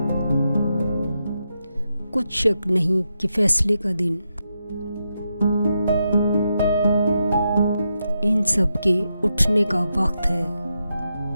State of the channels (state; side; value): inverted; both; correlation -0.85